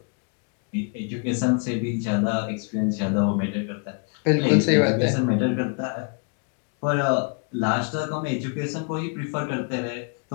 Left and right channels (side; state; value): right; quieter; 36.7 dB